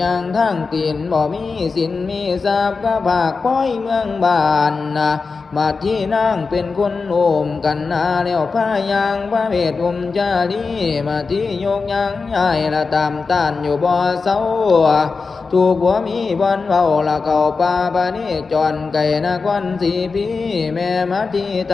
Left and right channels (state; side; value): quieter; right; 4.5 dB